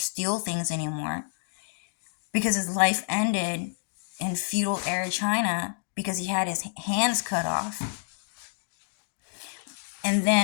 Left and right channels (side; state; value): right; silent; digital silence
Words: things anymore. Because his life ended in feudal era China because he had his hands cut off. And